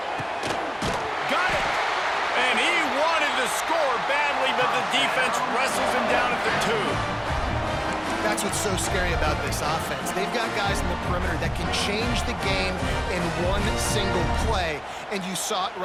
Got it! And he wanted to score badly, but the defense wrestles him down at the 2. That's what's so scary about this offense. They've got guys in the perimeter that can change the game in one single play, and you saw it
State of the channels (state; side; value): identical; both; correlation 1.00